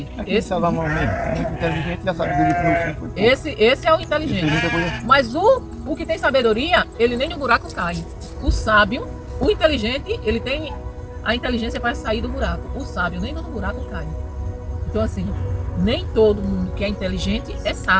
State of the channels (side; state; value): both; identical; correlation 1.00